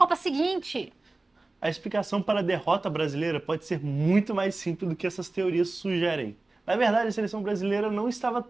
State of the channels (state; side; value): quieter; left; 3.2 dB